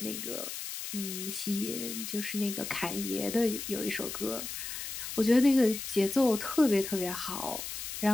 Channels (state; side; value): noise; left; hiss, 7 dB below the sound